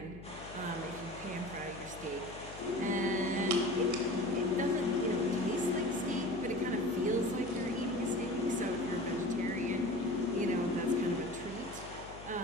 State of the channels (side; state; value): left; noise; hum, 15 dB below the sound